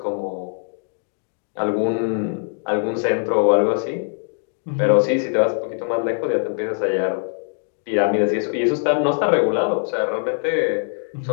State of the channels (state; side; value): silent; right; digital silence